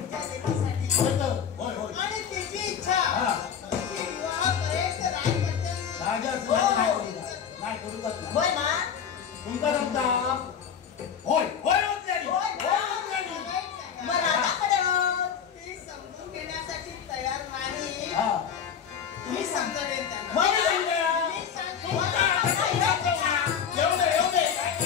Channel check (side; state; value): right; quieter; 7.7 dB